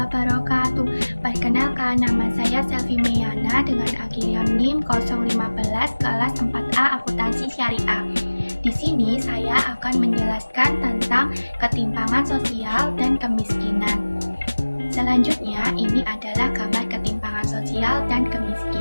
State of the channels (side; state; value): both; inverted; correlation -1.00